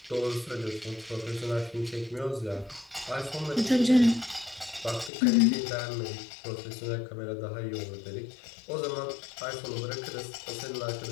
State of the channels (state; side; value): drops out; right; at 5.1 s